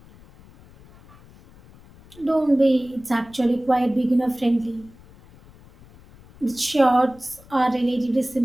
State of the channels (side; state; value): left; noise; rumble, 24 dB below the sound